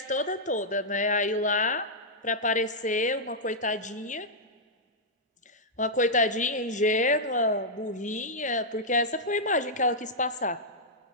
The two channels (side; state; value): both; normal; correlation -0.08